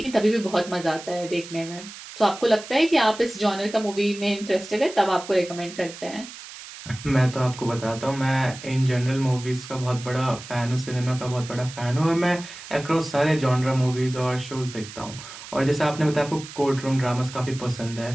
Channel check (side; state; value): right; noise; hiss, 14 dB below the sound